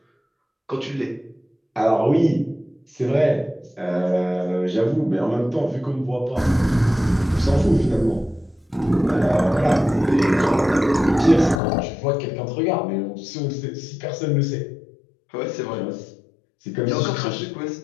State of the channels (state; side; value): drops out; right; at 11.6 s